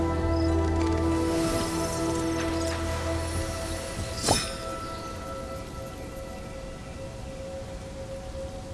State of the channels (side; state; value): both; identical; correlation 1.00